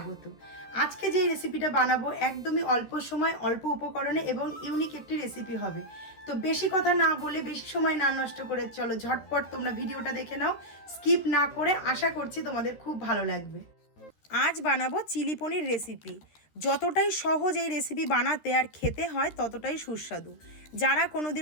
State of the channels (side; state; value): right; late; 13 ms